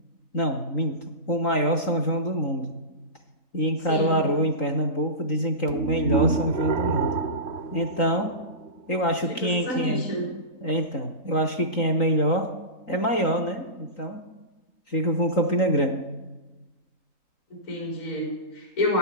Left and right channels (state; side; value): late; right; 3.9 ms